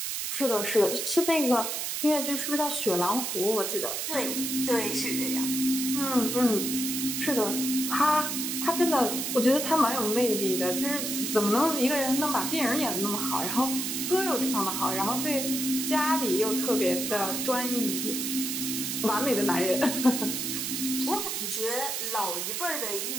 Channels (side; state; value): right; noise; hiss, 2 dB below the sound